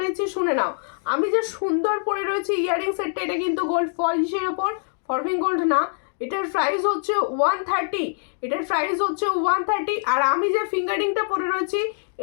শুনে নাও। আমি যে সুন্দর পরে রয়েছি ইয়ারিং সেটটা, এটা কিন্তু গোল্ড পলিশের ওপর, ফরফিং গোল্ড না। এটার প্রাইস হচ্ছে 130, এটার প্রাইস হচ্ছে 130। আর আমি যে ফিঙ্গারিংটা পরে রয়েছি,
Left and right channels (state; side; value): silent; right; digital silence